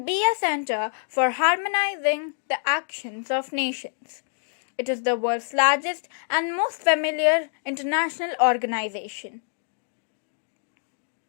be a center for harmonizing the actions of nations. It is the world's largest and most familiar international organization.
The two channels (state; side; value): silent; right; 61 dB below the other